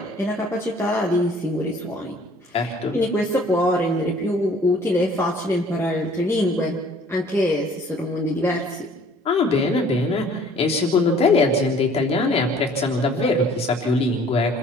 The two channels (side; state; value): both; normal; correlation 0.55